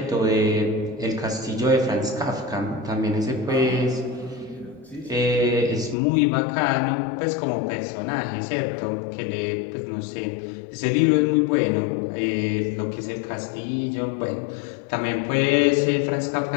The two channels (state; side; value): drops out; right; at 6.0 s